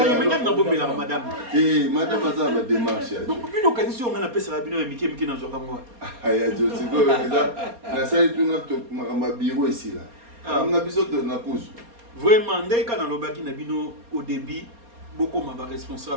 mena na bombe la madame. Madame aza ba démarche ya. Donc bino kanisi on ngana pesa bino mike na zoka ngwa. Ya Jo siko na sali tu na to ma bureau ici là. On a besoin de na pousse. Vraiment, dès qu'on a l'obaki na bino au début, beaucoup m'a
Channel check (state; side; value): late; left; 4.3 ms